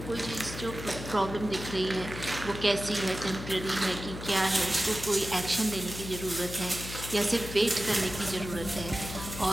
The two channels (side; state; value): left; noise; hum, 9 dB below the sound